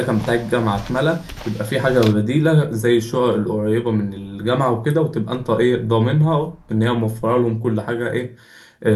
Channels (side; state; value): both; identical; correlation 1.00